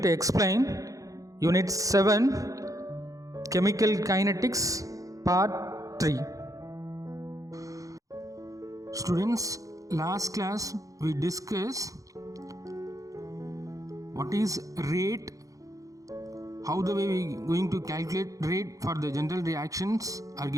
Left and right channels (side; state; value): left; late; 0.16 ms